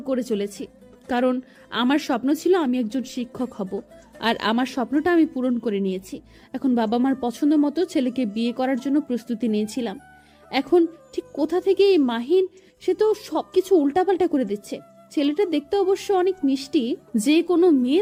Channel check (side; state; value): both; identical; correlation 1.00